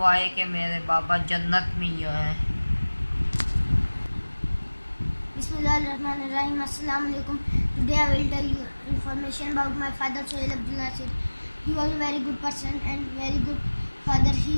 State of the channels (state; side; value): inverted; both; correlation -1.00